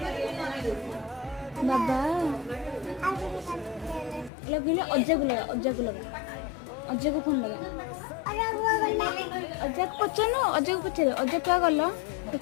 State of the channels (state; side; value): drops out; right; at 4.3 s